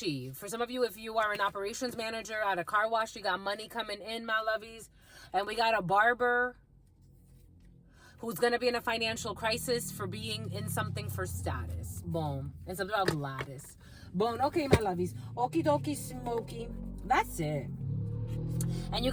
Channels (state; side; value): identical; both; correlation 1.00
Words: For some of you, if you are an operations manager at a car wash, you got money coming in, my lovies. And we got a barber who's going to be in a financial crisis for being in something for status. Boom. And something about Gladys. Boom. Okay, my lovies. Okie dokie smoky. That's it. And you